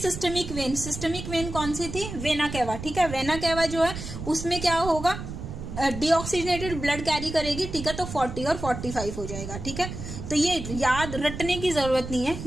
वेन, सिस्टमिक वेन कौन सी थी, वेना कैवा, ठीक है। वेना कैवा जो है उसमें क्या होगा, डीऑक्सीजनेटेड ब्लड कैरी करेगी, ठीक है। तो 40 और 45 हो जाएगा, ठीक है। तो ये याद रटने की जरूरत नहीं है,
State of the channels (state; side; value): noise; right; rumble, 8 dB below the sound